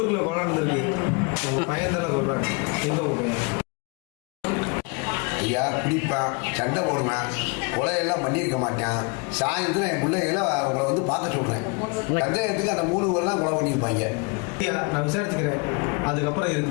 கொலை நடந்திருக்கு. உங்க பையன் தானே சொல்றாங்க. எங்க உங்க பையன்? ஐயா, குடிப்பேன், சண்டை போடுவேன், கொலையெல்லாம் பண்ணியிருக்க மாட்டேன். சாயந்தரம் என் பிள்ளைகளை உங்களை வந்து பார்க்க சொல்கிறேன். சந்தேகத்துக்கு அந்த 3 பேர்லாம் கொலை பண்ணியிருப்பாங்க. ஐயா, நான் விசாரிச்சுக்கிறேன், அதுக்கப்புறம்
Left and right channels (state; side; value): quieter; right; 31.9 dB